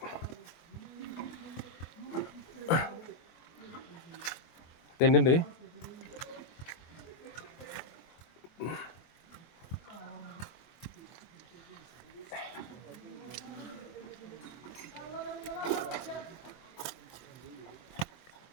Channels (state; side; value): late; right; 24 ms